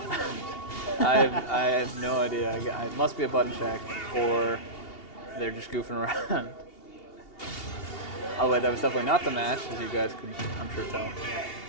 I have no idea. It must be a button check, or they're just goofing around. Oh wait, that was definitely not the match, as you guys could, I'm sure, tell.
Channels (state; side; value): late; right; 2.8 ms